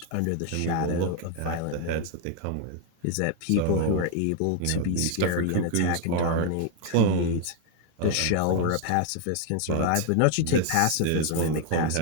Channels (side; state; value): both; different; correlation 0.00